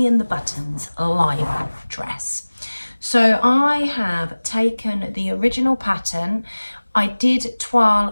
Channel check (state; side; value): inverted; both; correlation -1.00